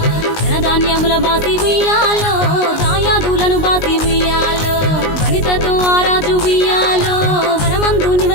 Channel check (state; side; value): late; right; 19 ms